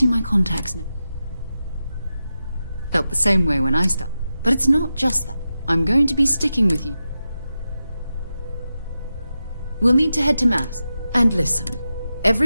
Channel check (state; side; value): inverted; both; correlation -0.91